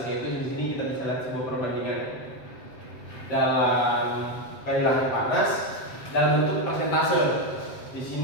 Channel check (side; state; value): right; late; 7.8 ms